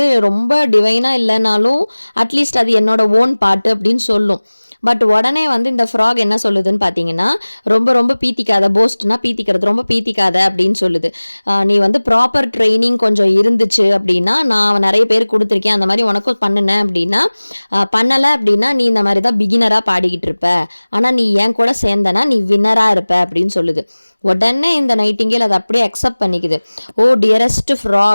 ரொம்ப டிவைனாக இல்லைனாலும் அட்லீஸ்ட் அது என்னோட ஓன் பாட்டு அப்படின்னு சொல்லும். பட் உடனே வந்து இந்த ஃப்ராக் என்ன சொல்லுதுன்னு பார்த்தீங்கன்னா, ரொம்ப ரொம்ப பீத்திக்காத, போஸ்ட்னா பீத்திக்கிறது, ரொம்ப பீத்திக்காத அப்படின்னு சொல்லுது. நீ வந்து ப்ராப்பர் ட்ரைனிங் கொஞ்சம் இருந்துச்சு அப்படின்னா, நான் நிறைய பேர் கொடுத்துருக்கேன், அந்த மாதிரி உனக்கும் பண்ணுனேன் அப்படின்னா, பண்ணலை அப்படின்னா நீ இந்த மாதிரி தான் பிகினராக பாடிக்கிட்டு இருப்ப, ஆனால் நீ என் கூட சேர்ந்தனா நீ வின்னராக இருப்ப அப்படின்னு சொல்லுது. உடனே இந்த நைட்டிங்கேல் அதை அப்படியே அக்செப்ட் பண்ணிக்குது. ஓ டியரஸ்ட்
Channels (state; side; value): inverted; both; correlation -1.00